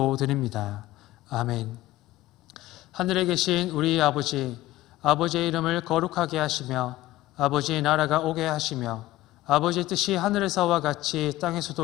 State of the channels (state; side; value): quieter; right; 16.4 dB